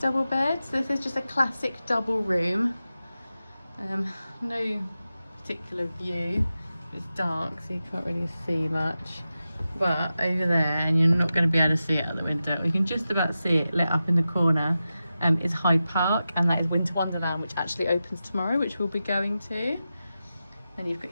bed. So this is just a classic double room. No particular view. It's dark, so you can't really see much. But over there, and you're not going to be able to see it out the window, you can just about see it lit up in the corner, is Hyde Park, and that is Winter Wonderland, which actually opens tomorrow, which we'll be going to. And you've got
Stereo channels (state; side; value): inverted; both; correlation -0.92